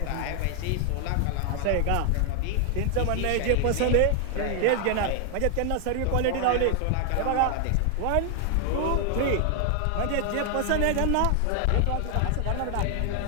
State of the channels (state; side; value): different; both; correlation 0.00